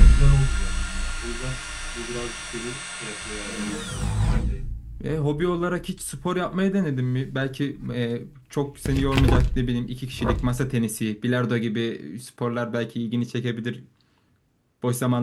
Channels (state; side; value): identical; both; correlation 1.00